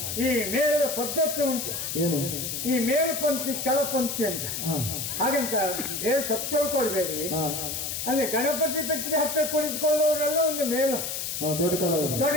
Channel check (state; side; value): noise; left; hiss, 4 dB below the sound